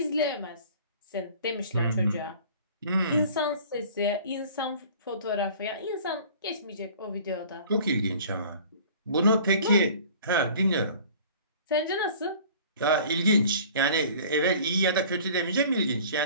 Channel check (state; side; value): inverted; both; correlation -0.47